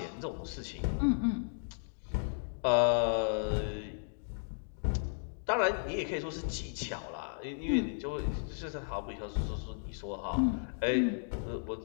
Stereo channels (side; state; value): right; silent; digital silence